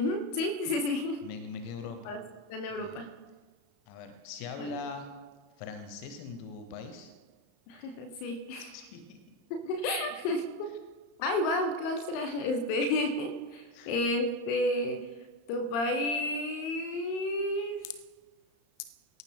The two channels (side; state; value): right; late; 35 ms